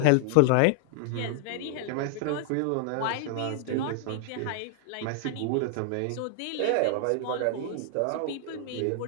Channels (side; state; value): both; different; correlation 0.00